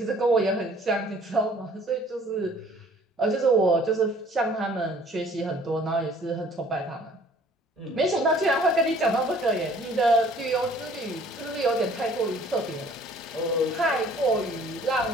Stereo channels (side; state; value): both; normal; correlation 0.55